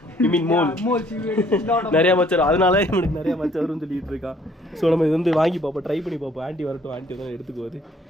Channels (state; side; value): normal; both; correlation 0.61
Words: ஐ மீன் mole. Moles you eat a lot of. நிறைய மச்சம், அதனால இவனுக்கு நிறைய மச்சம் வரும்னு சொல்லிட்டு இருக்கான். ஸோ நம்ம இது வந்து வாங்கி பார்ப்போம், ட்ரை பண்ணி பார்ப்போம். ஆண்டி வரட்டும், ஆண்டி வந்து எடுத்துக்குவது.